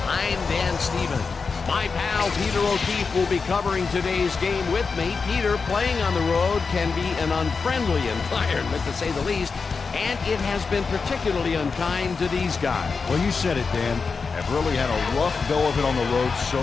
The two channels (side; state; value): right; quieter; 4.9 dB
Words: I'm Dan Stevens. My pal Peter O'Keefe will be covering today's game with me. Peter, playing on the road can be an unfriendly environment, to say the least, and it has been particularly unkind to these guys. Well, you said it, Dan. Have really had a rough go of it on the road so